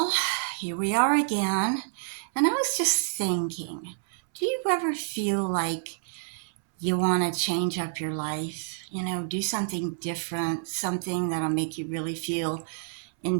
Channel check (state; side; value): silent; left; 59 dB below the other